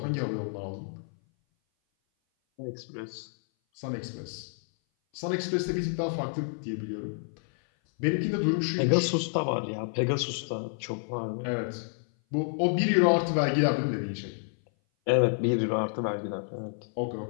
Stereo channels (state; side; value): silent; right; 57 dB below the other